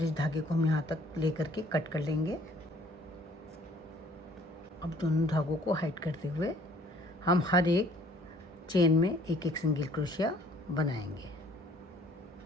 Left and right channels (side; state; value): both; normal; correlation 0.57